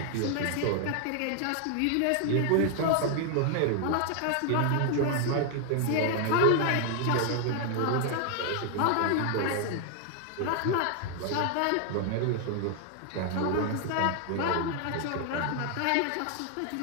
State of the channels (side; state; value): both; different; correlation 0.00